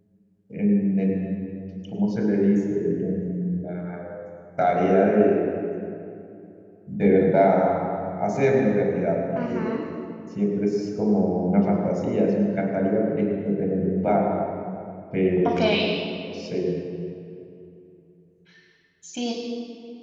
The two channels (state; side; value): identical; both; correlation 1.00